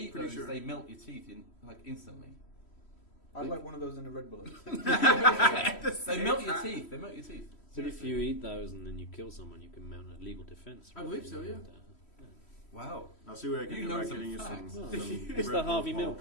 pretty those, sure. they melt your teeth instantly. I'd like one of those in a Red Bull. They melt your teeth. They melt your teeth. But if you eat those and then you kill someone, you can mount a legal defense. I believe so, yeah. Wow. I'll see what I can You do know by some getting you facts. some. It's Red the Bull Harvey Paul. Milk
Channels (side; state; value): right; late; 3.1 ms